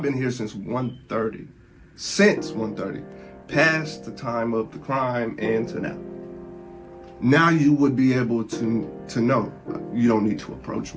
been here since 1:30. Since 1:30. Past the time of the crime and to now. Now you would be able to know you don't need to approach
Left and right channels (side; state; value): both; identical; correlation 1.00